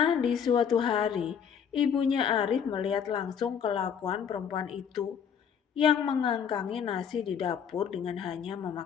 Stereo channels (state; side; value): quieter; right; 7.6 dB